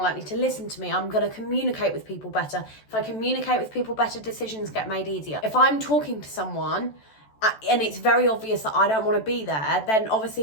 likely to listen to me. I'm going to communicate with people better. If I communicate with people better, decisions get made easier. If I'm talking to someone and it's very obvious that I don't want to be there, then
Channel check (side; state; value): right; late; 14 ms